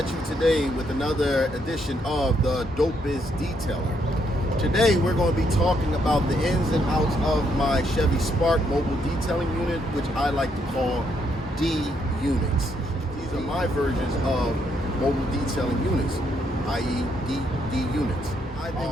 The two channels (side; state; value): both; normal; correlation 0.74